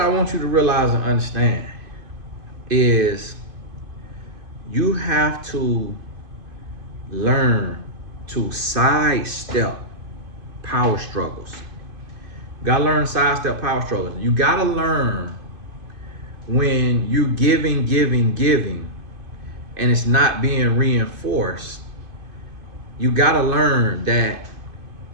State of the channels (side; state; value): left; late; 2.5 ms